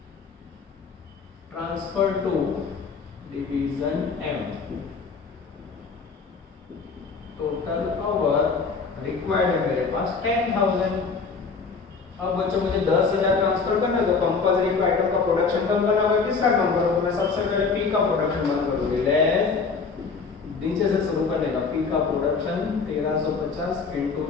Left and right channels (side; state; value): right; quieter; 4.9 dB